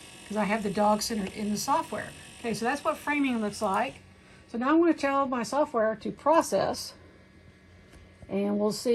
because I have the dog centered in the software. Okay, so that's what framing looks like. So now I'm going to tell my software to process, and we'll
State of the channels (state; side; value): identical; both; correlation 1.00